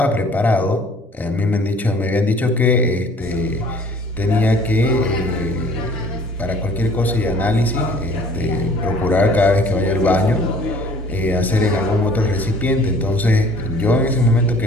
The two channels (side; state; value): both; normal; correlation 0.52